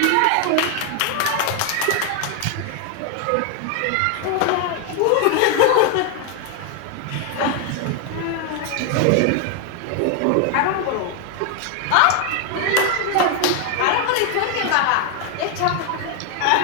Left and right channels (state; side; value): different; both; correlation 0.01